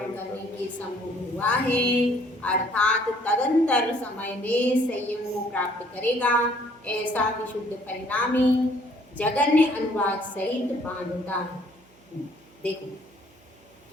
करने के समूह हुआ है, अर्थात तदंतर समय में संयम को प्राप्त करेगा। ऐसा विशुद्ध परिणामी जगन्य अनुभाग सहित बांधता है। देखो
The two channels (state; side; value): noise; right; hum, 29 dB below the sound